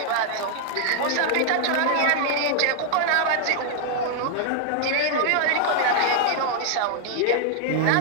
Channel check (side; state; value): both; different; correlation -0.01